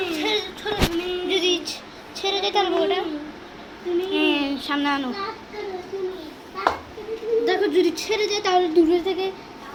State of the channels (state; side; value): identical; both; correlation 1.00